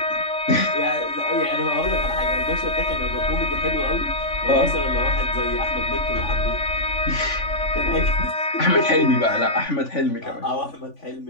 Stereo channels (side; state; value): right; late; 3.5 ms